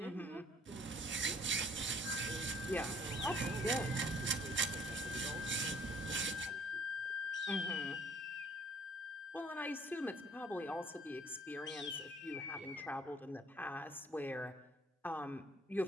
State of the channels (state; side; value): normal; both; correlation 0.57